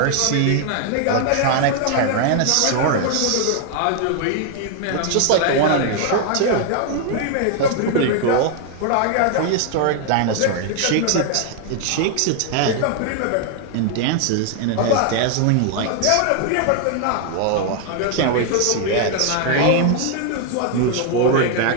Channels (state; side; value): different; both; correlation 0.00